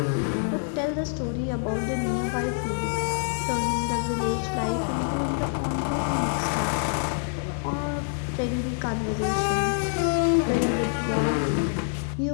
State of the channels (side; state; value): right; silent; 61 dB below the other